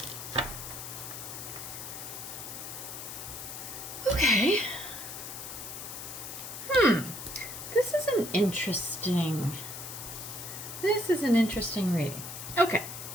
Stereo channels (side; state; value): left; noise; hiss, 9 dB below the sound